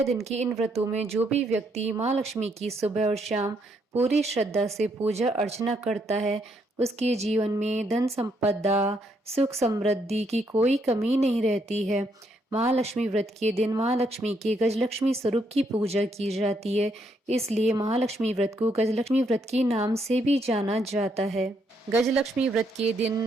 दिन के इन व्रतों में जो भी व्यक्ति महालक्ष्मी की सुबह और शाम पूरी श्रद्धा से पूजा अर्चना करता है, उसके जीवन में धन संपदा, सुख समृद्धि की कोई कमी नहीं रहती है। महालक्ष्मी व्रत के दिन महालक्ष्मी के गजलक्ष्मी स्वरूप की पूजा की जाती है, इसलिए महालक्ष्मी व्रत को गजलक्ष्मी व्रत के नाम से भी जाना जाता है। गजलक्ष्मी व्रत के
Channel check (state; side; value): normal; both; correlation 0.74